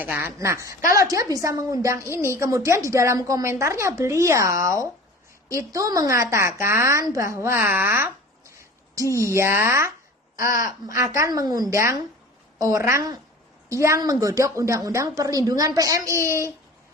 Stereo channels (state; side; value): normal; both; correlation 0.40